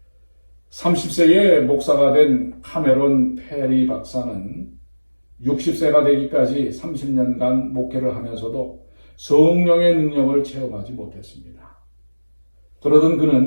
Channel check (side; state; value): both; inverted; correlation -1.00